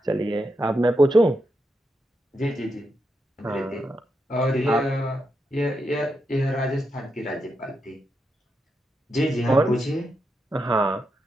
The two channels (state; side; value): normal; both; correlation 0.84